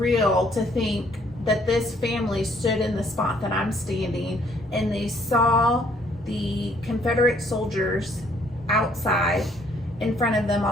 to think that this family stood in the spot that I'm standing and they saw the Confederate soldiers outside in front of them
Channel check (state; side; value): normal; both; correlation 0.64